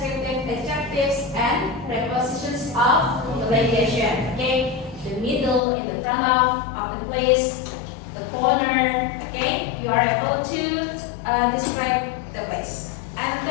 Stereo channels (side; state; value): right; drops out; at 5.6 s